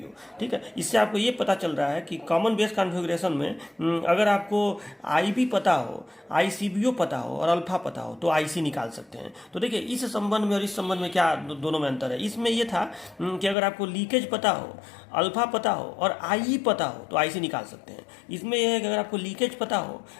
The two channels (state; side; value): drops out; right; at 13.6 s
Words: ठीक है। इससे आपको ये पता चल रहा है कि कॉमन बेस कॉन्फ़िगरेशन में अगर आपको IB पता हो, ICBO पता हो और अल्फा पता हो तो IC निकाल सकते हैं। तो देखिए इस संबंध में और इस संबंध में क्या दोनों में अंतर है। इसमें ये था कि अगर आपको लीकेज पता हो, अल्फा पता हो और IE पता हो तो IC निकाल सकते हैं। इसमें यह है कि अगर आपको लीकेज पता हो,